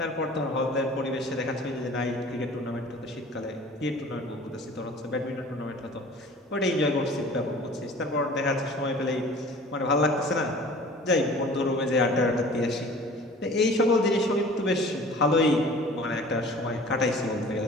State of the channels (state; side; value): normal; both; correlation 0.45